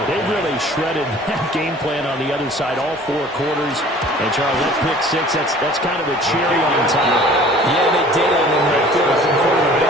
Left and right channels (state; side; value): normal; both; correlation 0.49